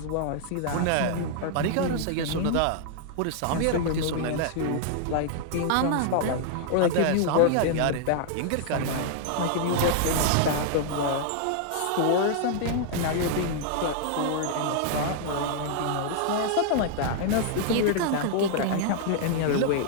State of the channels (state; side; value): different; both; correlation -0.01